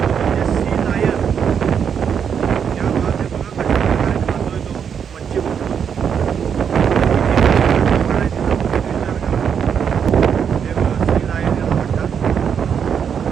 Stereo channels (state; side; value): quieter; left; 7.5 dB